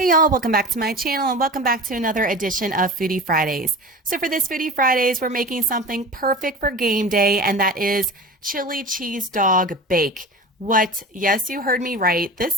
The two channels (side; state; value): both; normal; correlation 0.33